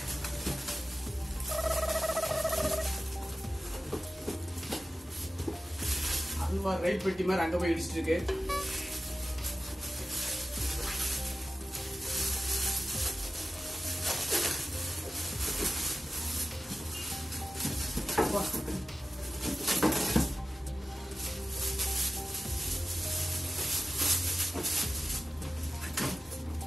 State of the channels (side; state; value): both; normal; correlation 0.96